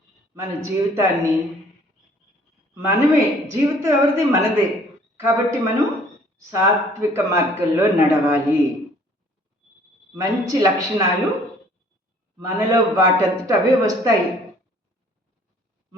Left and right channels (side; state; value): both; normal; correlation 0.56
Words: మన జీవితాన్ని జీవితం ఎవరిది? మనదే. కాబట్టి మనం సాత్విక మార్గంలో నడవాలి. మంచి లక్షణాలు మనలో వాటంతట అవే వస్తాయి.